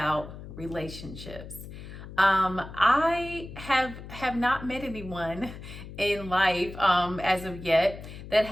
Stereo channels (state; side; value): noise; left; hum, 13 dB below the sound